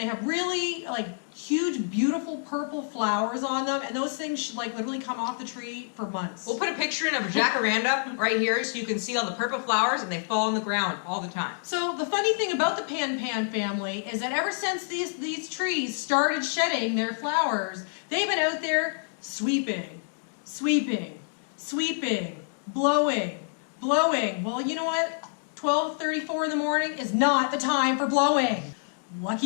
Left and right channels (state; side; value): silent; right; digital silence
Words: have really like huge, beautiful purple flowers on them, and those things should like literally come off the tree for months. We'll put a picture in of a jacaranda right here so you can see all the purple flowers, and they fall on the ground all the time. So the funny thing about the Pan-Pam family is that ever since these trees started shedding their flowers, they've been out there sweeping, sweeping, sweeping, blowing, blowing. Well, you know what? 12:34 in the morning is not the time for blowing.